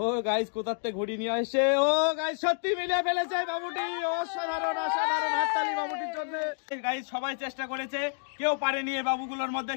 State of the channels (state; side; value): silent; right; digital silence